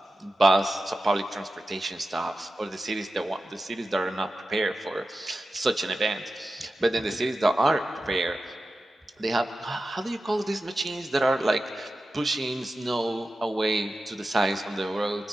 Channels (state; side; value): normal; both; correlation 0.93